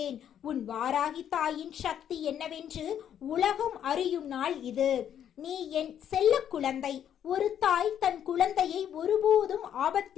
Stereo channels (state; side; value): quieter; right; 9.6 dB